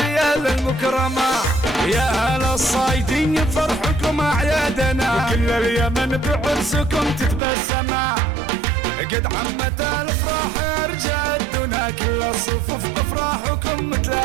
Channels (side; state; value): left; drops out; at 7.4 s